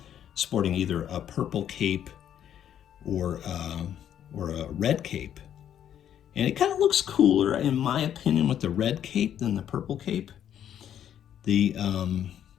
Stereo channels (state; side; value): quieter; right; 10.0 dB